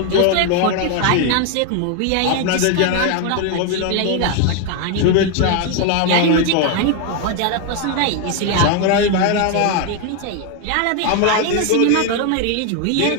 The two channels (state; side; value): different; both; correlation 0.01